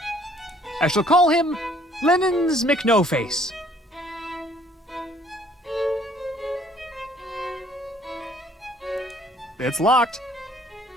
I shall call him Lennon's McNoface. It's locked.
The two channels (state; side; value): normal; both; correlation 0.60